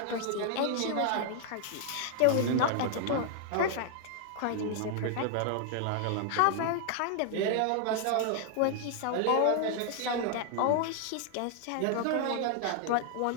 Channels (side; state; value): both; different; correlation 0.00